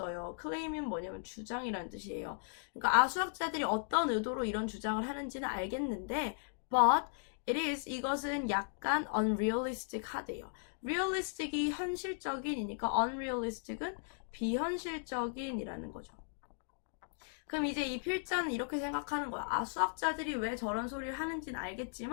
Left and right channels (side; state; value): right; silent; digital silence